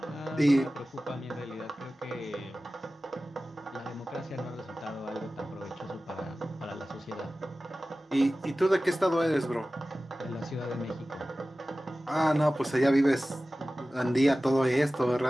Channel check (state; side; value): normal; both; correlation 0.96